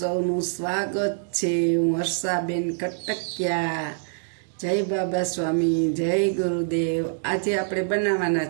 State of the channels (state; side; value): silent; left; digital silence